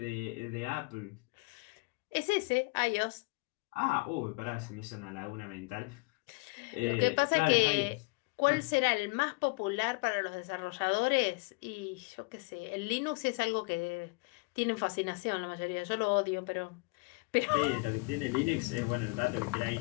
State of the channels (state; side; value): quieter; right; 30.8 dB